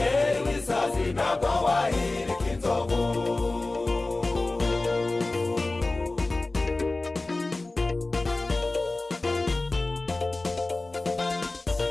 w'isazi ntabwo wahirika inzovu.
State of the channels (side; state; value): right; quieter; 3.1 dB